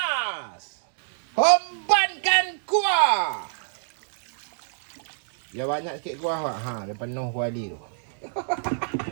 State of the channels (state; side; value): silent; left; digital silence